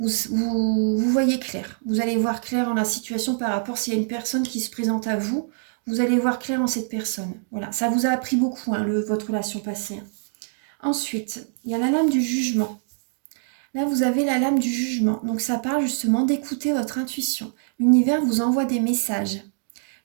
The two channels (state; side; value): silent; left; 62 dB below the other